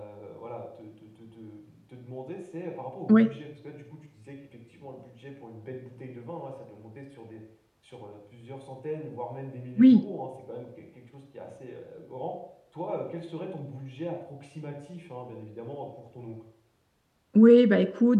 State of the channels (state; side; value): identical; both; correlation 1.00